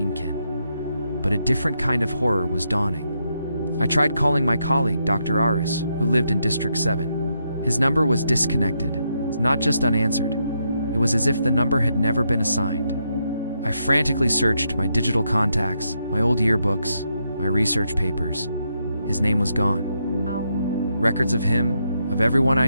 Kính, but a different kind of horror was dawning. I tried calling my colleague, Dr. Aris, who lived in District 7. His number was disconnected, not just unanswered. It was as if the number had never been assigned. I frantically searched my digital contacts, my old yearbooks, my research papers. His name was gone. Wow. Records of him, of everyone I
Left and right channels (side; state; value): both; inverted; correlation -0.80